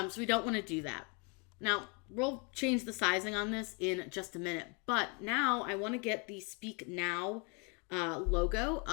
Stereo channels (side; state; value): right; quieter; 33.7 dB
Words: we don't want to do that. Now, we'll change the sizing on this in just a minute, but now I want to get the Speak Now logo